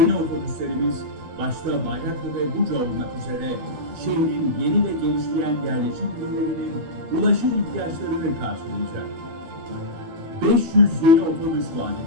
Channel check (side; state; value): left; late; 12 ms